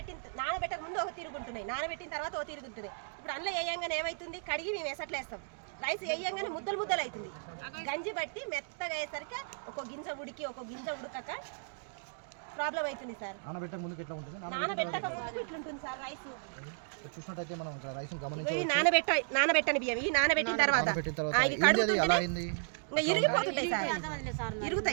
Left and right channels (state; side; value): silent; left; digital silence